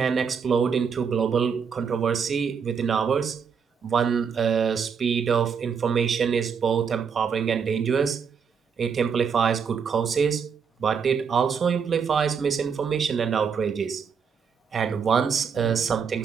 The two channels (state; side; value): quieter; left; 6.4 dB